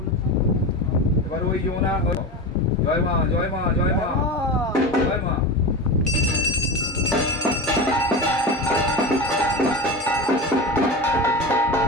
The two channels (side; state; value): both; normal; correlation 0.25